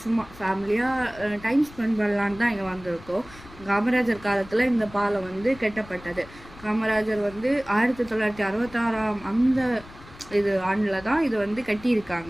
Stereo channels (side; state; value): left; noise; rumble, 20 dB below the sound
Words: சும்மா ஃபேமிலியாக டைம் ஸ்பெண்ட் பண்ணலான்னு தான் இங்கே வந்திருக்கோம். காமராஜர் காலத்தில் இந்த பாலம் கட்டப்பட்டது. காமராஜர் 1966 அந்த ஆண்டில் தான் இது